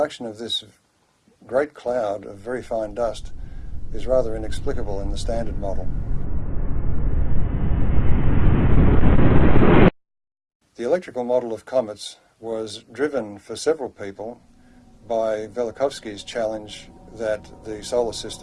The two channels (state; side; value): identical; both; correlation 1.00